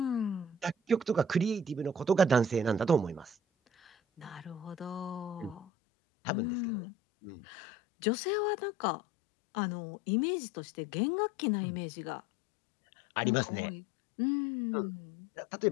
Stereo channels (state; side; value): drops out; right; at 5.7 s